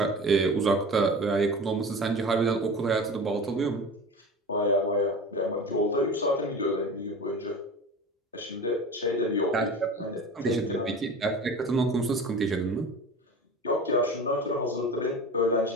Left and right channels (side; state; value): both; normal; correlation 0.34